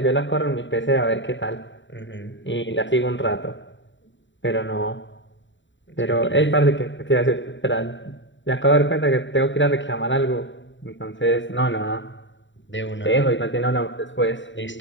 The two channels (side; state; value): right; late; 0.54 ms